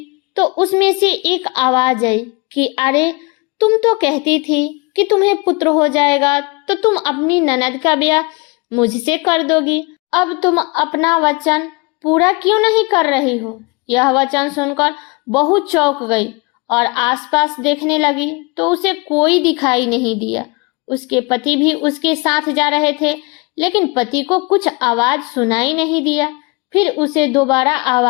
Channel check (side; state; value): right; quieter; 27.6 dB